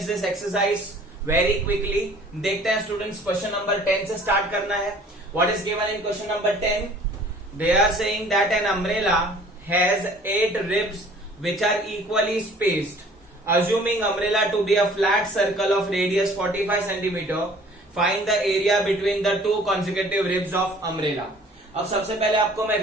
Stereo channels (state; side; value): normal; both; correlation 0.52